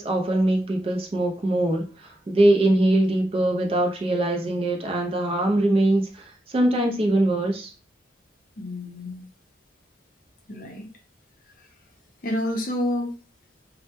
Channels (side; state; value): both; normal; correlation 0.84